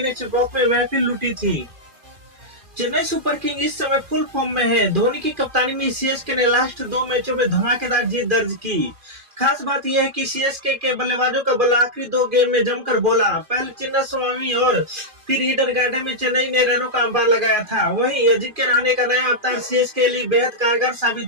ने चेपॉक में महफिल लूटी थी। चेन्नई सुपर किंग इस समय फुल फॉर्म में है। धोनी की कप्तानी में सीएसके ने लास्ट 2 मैचों में धमाकेदार जीत दर्ज की। खास बात यह है कि सीएसके के बल्लेबाजों का बल्ला आखिरी 2 गेम में जमकर बोला। पहले चिन्नास्वामी और फिर ईडन गार्डन में चेन्नई ने रनों का अंबार लगाया था। वहीं अजिंक्य रहाणे का नया अवतार सीएसके के लिए बेहद कारगर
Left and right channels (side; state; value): left; late; 2.4 ms